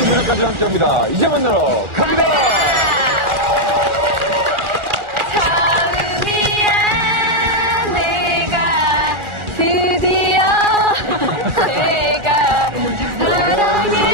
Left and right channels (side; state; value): left; late; 1.4 ms